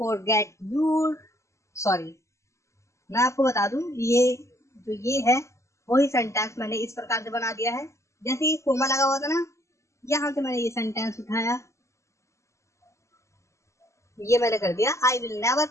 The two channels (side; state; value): right; late; 0.14 ms